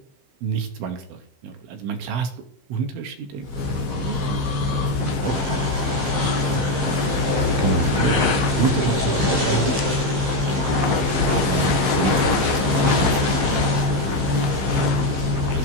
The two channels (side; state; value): left; late; 15 ms